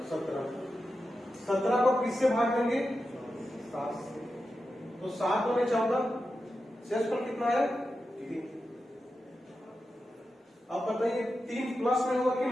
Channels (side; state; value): both; normal; correlation 0.90